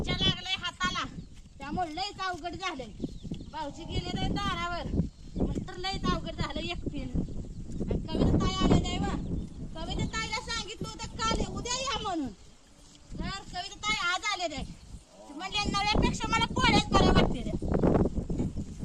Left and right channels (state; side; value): identical; both; correlation 1.00